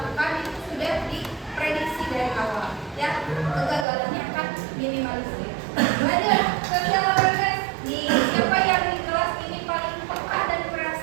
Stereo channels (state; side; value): drops out; left; at 3.9 s